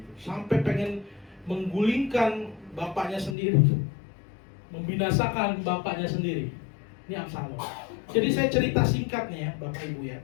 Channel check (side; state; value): right; drops out; at 3.4 s